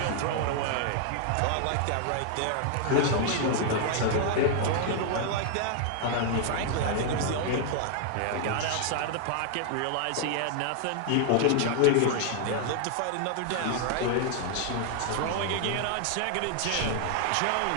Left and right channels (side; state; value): both; different; correlation 0.00